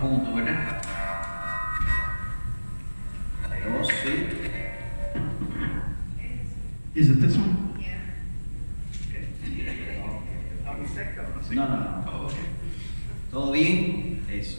juntos, ¿verdad? Dos, sí. Is it this one? No. Oh, okay. ¿Todo bien? Eso.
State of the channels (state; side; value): inverted; both; correlation -1.00